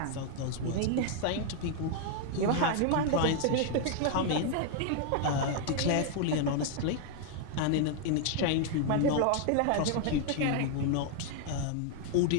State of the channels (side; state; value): both; different; correlation 0.00